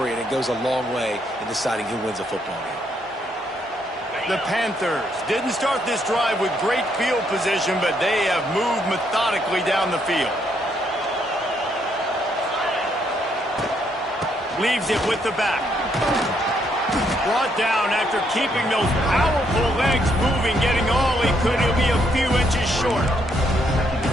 and it goes a long way in deciding who wins a football game. The Panthers didn't start this drive with great field position, but they have moved methodically down the field. Leaves it with the back. Brought down after keeping those powerful legs moving, getting all he could. He'll be a few inches short.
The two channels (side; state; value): both; normal; correlation 0.73